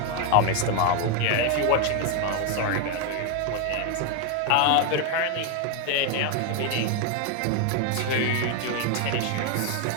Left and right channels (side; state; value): both; different; correlation 0.01